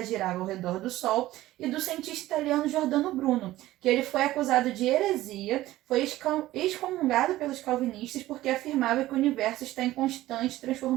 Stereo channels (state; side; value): quieter; left; 16.0 dB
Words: girava ao redor do Sol, e do cientista italiano Giordano Bruno, que ele foi acusado de heresia, foi excomungado pelos calvinistas porque afirmava que o universo está em constante